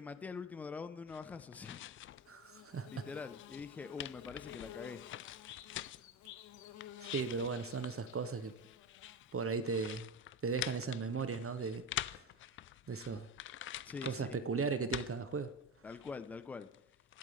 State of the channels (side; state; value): both; normal; correlation 0.21